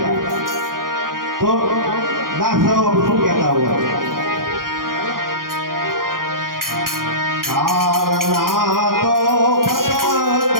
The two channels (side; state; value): left; late; 0.91 ms